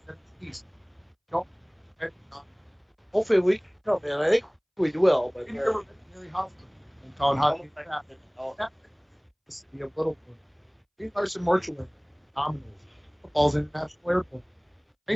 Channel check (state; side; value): identical; both; correlation 1.00